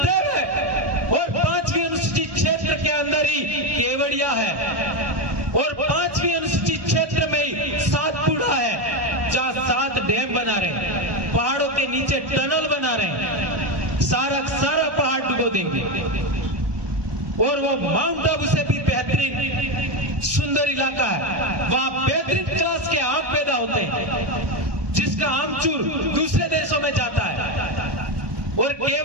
है, और 5वीं अनुसूची क्षेत्र के अंदर ही केवड़िया है, और 5वीं अनुसूची क्षेत्र में ही सातपुड़ा है, जहां 7 डैम बना रहे हैं, पहाड़ों के नीचे टनल बना रहे हैं, सारा पहाड़ डुबो देंगे। और वो माउंट आबू से भी बेहतरीन सुंदर इलाका है, वहां बेहतरीन क्लास के आम पैदा होते हैं, जिसका आमचूर दूसरे देशों में जाता है। और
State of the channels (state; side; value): late; left; 1.2 ms